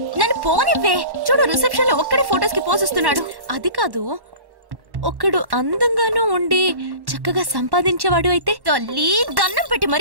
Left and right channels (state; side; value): late; left; 1.1 ms